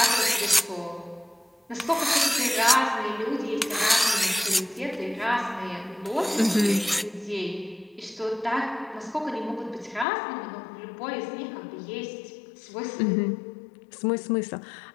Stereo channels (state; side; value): drops out; right; at 10.1 s